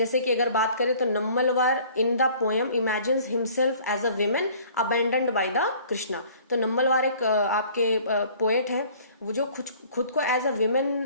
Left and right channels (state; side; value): inverted; both; correlation -0.52